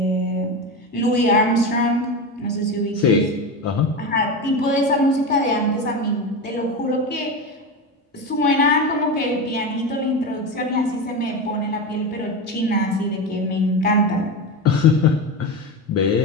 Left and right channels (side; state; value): both; normal; correlation 0.20